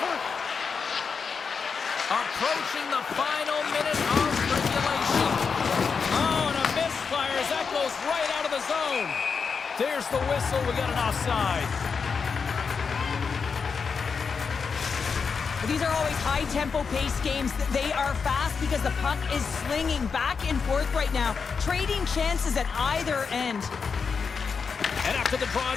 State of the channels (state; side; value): quieter; right; 5.6 dB